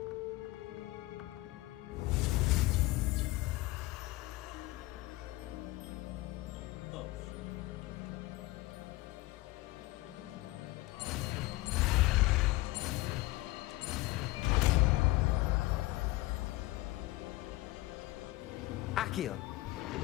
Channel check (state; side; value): quieter; right; 19.3 dB